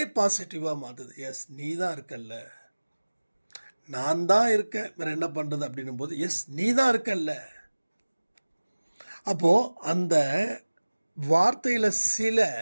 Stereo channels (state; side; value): inverted; both; correlation -1.00